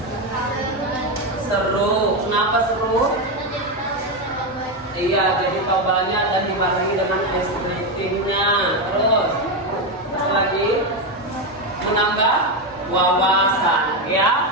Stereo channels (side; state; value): both; normal; correlation 0.10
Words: Seru. Kenapa seru? Iya, jadi tahu banyak dan dibarengi dengan ice creamnya. Terus, apa lagi? Menambah wawasan,